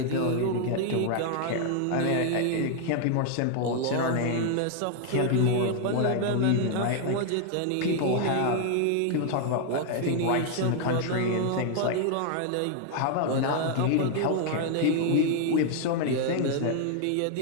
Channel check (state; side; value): different; both; correlation 0.00